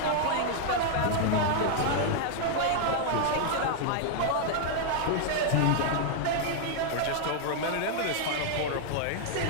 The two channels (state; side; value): different; both; correlation 0.00